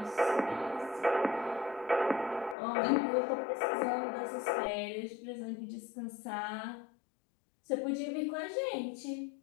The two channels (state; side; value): drops out; right; at 2.6 s